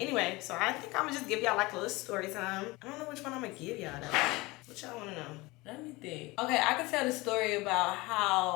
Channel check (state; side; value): quieter; right; 22.4 dB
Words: so I think I'm gonna just give y'all like a little story time. I don't know which one I'm gonna give y'all though. What y'all wanna know? Let me think. Okay, I can tell the story about